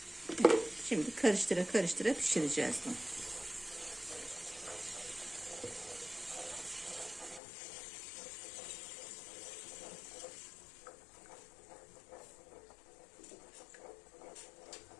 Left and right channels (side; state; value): right; drops out; at 7.4 s